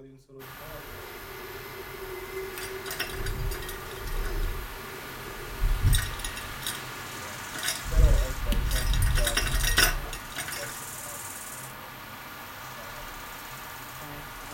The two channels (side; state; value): both; identical; correlation 1.00